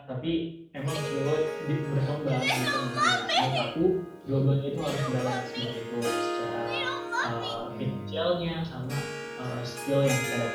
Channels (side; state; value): both; identical; correlation 1.00